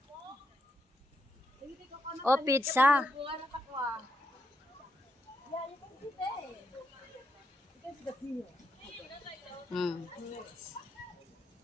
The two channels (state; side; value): normal; both; correlation 0.81